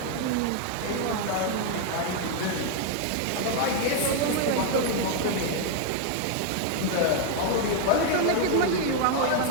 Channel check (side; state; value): both; different; correlation 0.00